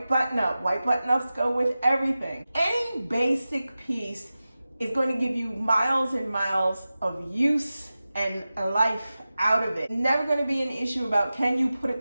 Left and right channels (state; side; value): inverted; both; correlation -0.95